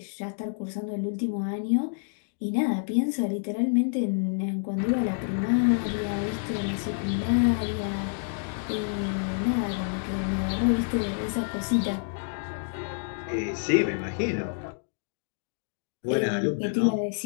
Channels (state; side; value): silent; right; digital silence